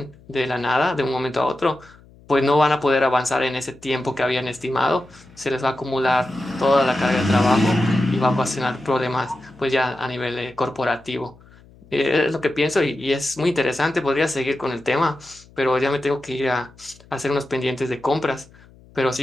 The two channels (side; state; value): left; noise; hum, 25 dB below the sound